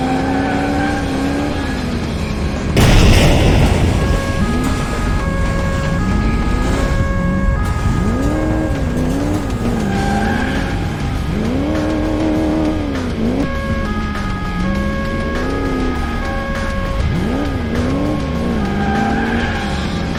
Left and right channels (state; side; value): identical; both; correlation 1.00